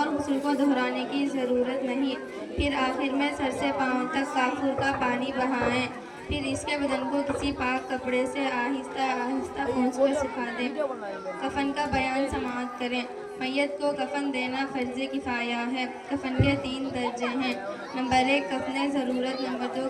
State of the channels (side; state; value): both; identical; correlation 1.00